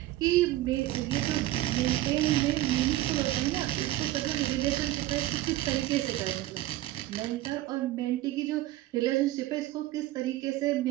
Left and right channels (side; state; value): left; quieter; 15.6 dB